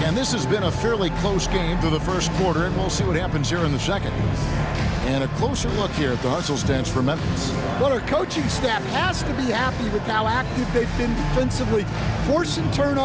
And this has been a fairly close game through the first quarter, and we'll see what happens here in the second. And a closer look here at the hustle stance for Memphis. Well, our coaching staff has to be happy with how active they've been defensively, forcing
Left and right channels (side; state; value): both; identical; correlation 1.00